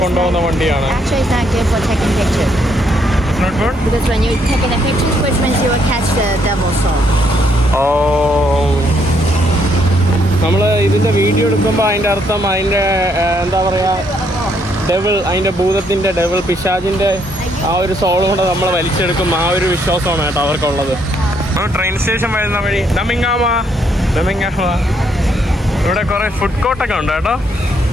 കൊണ്ടുപോകുന്ന വണ്ടിയാണ്. Not good? Because when you're taking the pictures, which means you will catch the devil soul. നമ്മൾ ഇതിൻ്റെ വീഡിയോ എടുക്കുമ്പോൾ അതിൻ്റെ അർത്ഥം അതിൻ്റെ എന്താ പറയുക, അതിൻ്റെ ഭൂതത്തിൻ്റെ പിശാചിൻ്റെ ആ ഒരു സോളും കൂടെ നമ്മൾ വലിച്ചെടുക്കും. ആ ഒരു വിശ്വാസമാണ് കേട്ടോ അവർക്കുള്ളത്. ട്രെയിൻ സ്റ്റേഷൻ വരുന്ന വഴി നമിങ്ങാമ. ഇവിടെ കുറേ ഫുഡ് കോർട്ടൊക്കെ ഉണ്ട് കേട്ടോ.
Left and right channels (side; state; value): both; normal; correlation 0.72